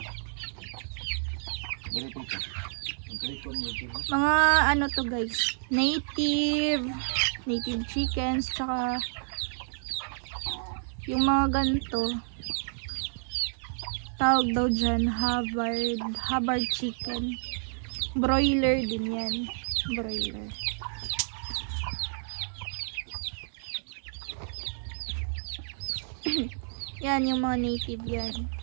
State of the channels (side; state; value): left; silent; digital silence